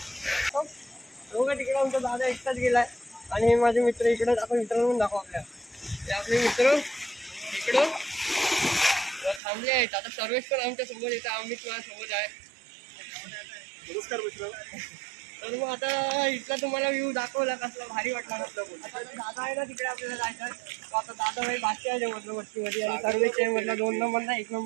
तिकडे आमचा दादा एकटाच गेलाय आणि हे माझे मित्र इकडे. आपण मित्रांनो दाखव आपले मित्र इकडं थांबले आहेत. आता सर्वेश पण आमच्या सोबत येतात. आम्ही तुम्हाला सोबत आहे. नमस्कार मित्र. तर मग आता इथला तुम्हाला व्ह्यू दाखवला कसला भारी वाटला म्हटलं. आता दादा आहे ना तिकडे आपल्याला जायचं आहे. आता दादा भाई बादशाह आहे म्हटलं वस्तीमध्ये आणि सर्वेश आहे म्हटलं 2 नंबरला 1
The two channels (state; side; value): drops out; left; at 9.4 s